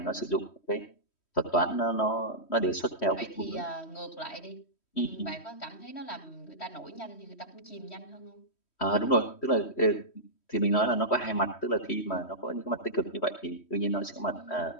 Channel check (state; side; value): late; right; 3.1 ms